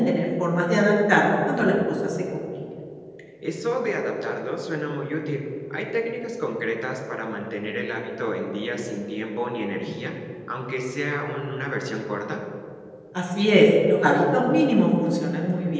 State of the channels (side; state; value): both; identical; correlation 1.00